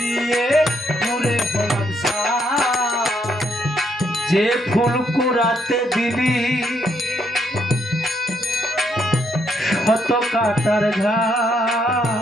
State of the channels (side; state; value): both; normal; correlation 0.74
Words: পুরে হলাম ছাই যে ফুল কোরাতে দিলি শত কাটার